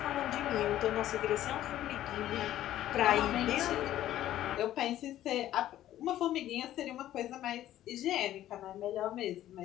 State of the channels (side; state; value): right; quieter; 13.0 dB